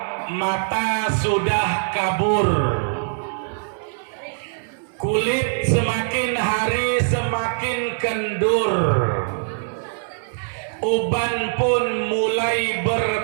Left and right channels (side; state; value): left; silent; digital silence